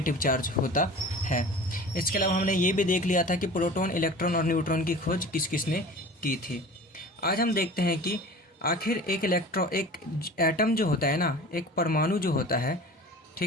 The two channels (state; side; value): normal; both; correlation 0.39